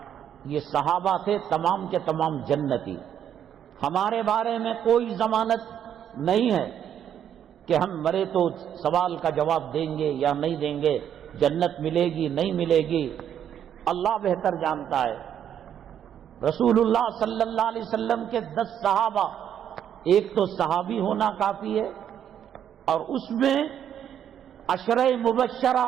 یہ صحابہ تھے تمام کے تمام جنتی. ہمارے بارے میں کوئی ضمانت نہیں ہے کہ ہم مرے تو سوال کا جواب دیں گے یا نہیں دیں گے، جنت ملے گی نہیں ملے گی، اللہ بہتر جانتا ہے. رسول اللہ صلی اللہ علیہ وسلم کے 10 صحابہ، ایک تو صحابی ہونا کافی ہے، اور اس میں عشرہ مبشرہ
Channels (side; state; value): left; quieter; 9.5 dB